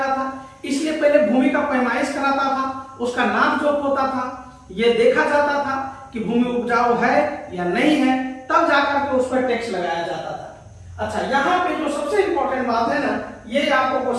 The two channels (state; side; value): identical; both; correlation 1.00